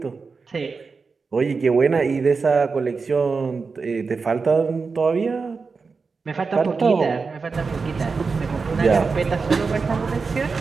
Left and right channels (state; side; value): quieter; left; 4.7 dB